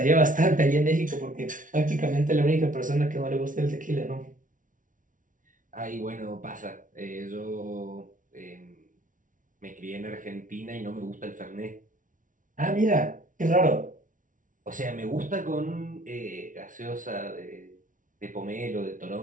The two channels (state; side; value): late; left; 0.38 ms